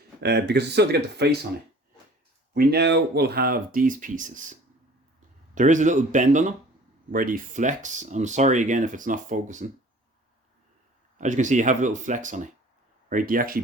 because it's still to get the face on it. We now will have these pieces. There is a little bend on them where they flex. I'm sorry again if it's not focusing. As you can see, you have a little flex on it, right? They actually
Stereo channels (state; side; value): normal; both; correlation 0.48